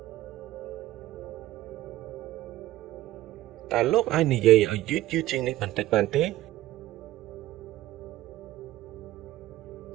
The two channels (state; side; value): quieter; left; 15.6 dB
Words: តើលោកអាចនិយាយឲ្យយឺតៗជាងនេះបន្តិចបានទេ